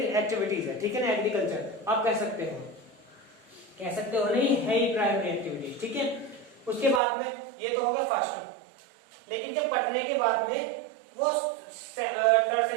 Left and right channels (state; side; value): drops out; left; at 7.0 s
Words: एक्टिविटीज है। ठीक है ना, एग्रीकल्चर आप कह सकते हो नहीं, है ही प्राइमरी एक्टिविटीज। ठीक है, उसके बाद में ये तो होगा फर्स्ट। लेकिन जब पढ़ने के बाद में वो